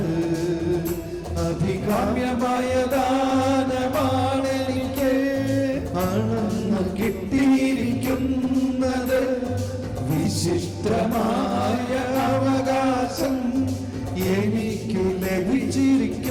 അഭികാമ്യമായ ദാനമാണെനിക്ക് അളന്നു കിട്ടിയിരിക്കുന്നത്. വിശിഷ്ടമായ അവകാശം എനിക്കു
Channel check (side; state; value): both; identical; correlation 1.00